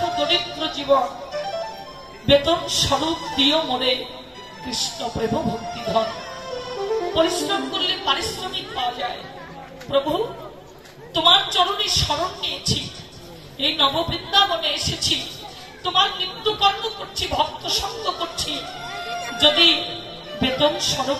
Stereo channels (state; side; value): identical; both; correlation 1.00